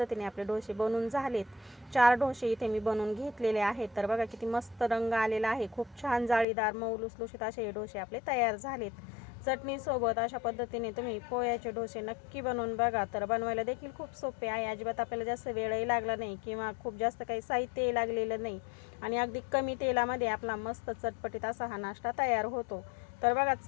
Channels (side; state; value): right; drops out; at 6.5 s